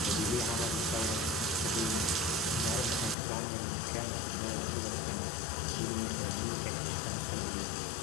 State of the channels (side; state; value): right; drops out; at 3.2 s